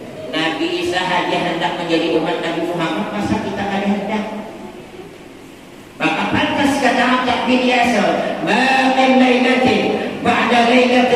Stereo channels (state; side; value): identical; both; correlation 1.00